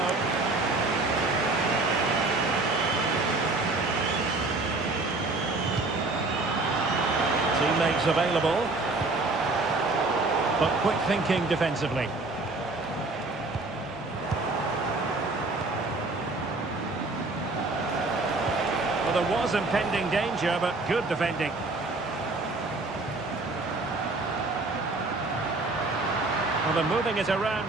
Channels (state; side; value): quieter; left; 3.3 dB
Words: Teammates available. But quick thinking defensively. Well, there was impending danger, but good defending. Well, they're moving it around